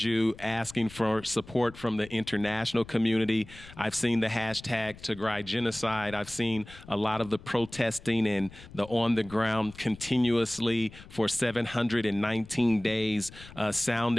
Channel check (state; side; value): noise; left; rumble, 19 dB below the sound